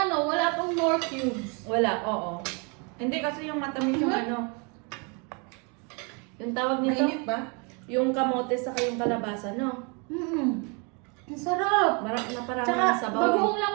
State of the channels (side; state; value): left; quieter; 33.5 dB